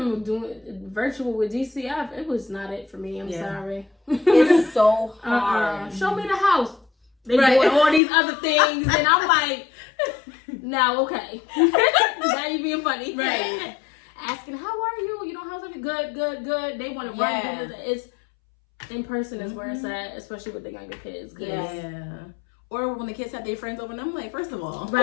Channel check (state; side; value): drops out; right; at 8.0 s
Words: doing virtual with DCF. It was not it for me. I'm sorry. It's so hard. Show me the house. They doing all these other things. And I'm like, now, okay. Now you being funny. Right. Asking, how are you? How's everything? Good. They want to run. It's in person is where it's at, especially with the younger kids. Yeah. Or when the kids have their friends over, and I'm like, first of all,